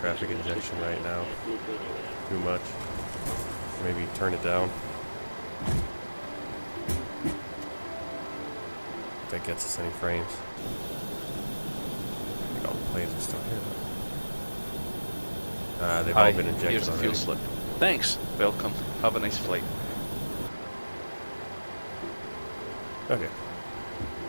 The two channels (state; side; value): inverted; both; correlation -1.00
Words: injection right now. Too much. Maybe turn it down. If that gets us any frames. I think all the planes are still here. They've all been injected Here's the already. fuel slip. Thanks. Welcome. Have a nice flight. Okay.